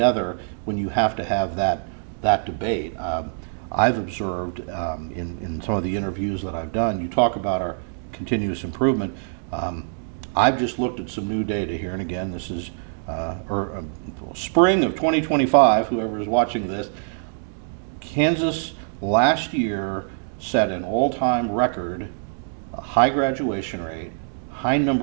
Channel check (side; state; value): left; silent; digital silence